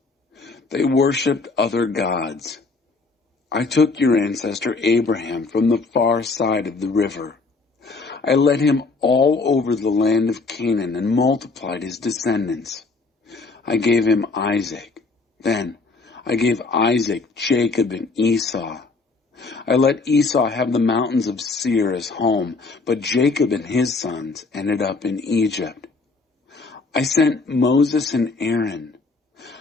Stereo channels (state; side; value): quieter; right; 3.9 dB